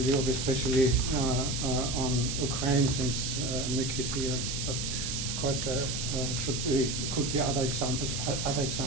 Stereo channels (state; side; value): noise; right; hiss, 3 dB below the sound